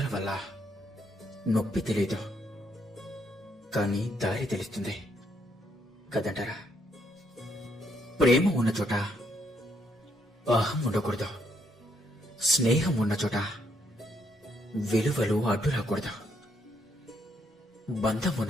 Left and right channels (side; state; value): both; normal; correlation 0.73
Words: వల్ల నొప్పి తెలియదు, కానీ దారి తెలుస్తుంది కదంటారా. ప్రేమ ఉన్న చోట అహం ఉండకూడదు, స్నేహం ఉన్న చోట విలువలు అడ్డు రాకూడదు. బంధం